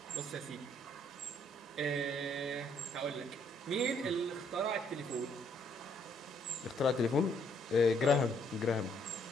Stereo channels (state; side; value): normal; both; correlation 0.68